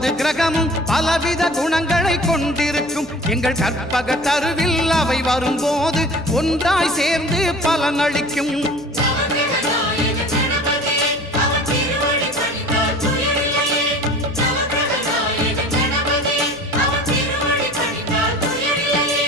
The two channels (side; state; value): left; noise; hum, 20 dB below the sound